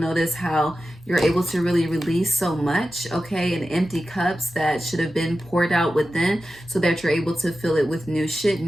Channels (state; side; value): normal; both; correlation 0.93